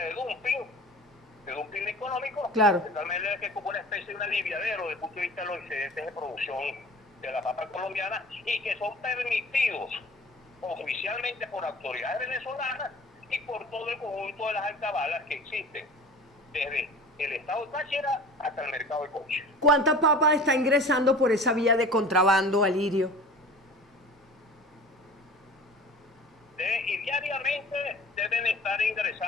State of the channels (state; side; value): normal; both; correlation 0.41